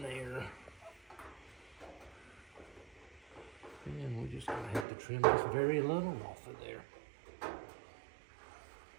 there. And we're just gonna have to trim this very little off of there.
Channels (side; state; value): left; drops out; at 4.9 s